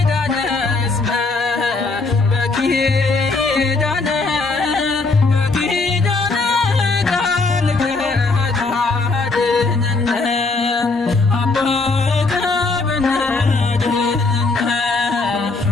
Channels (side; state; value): right; quieter; 3.7 dB